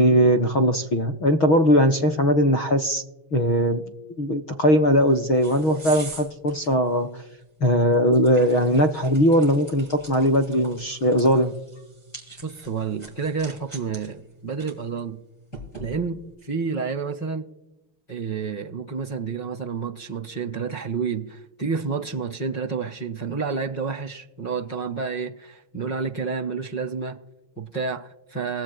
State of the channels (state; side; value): late; right; 6.3 ms